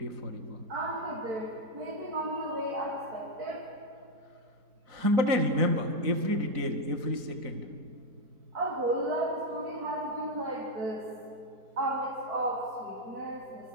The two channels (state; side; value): late; left; 4.0 ms